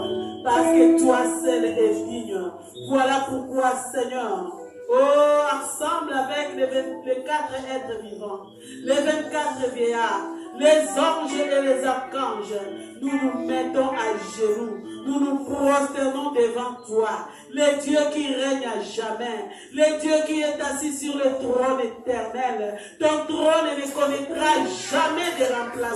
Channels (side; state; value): both; identical; correlation 1.00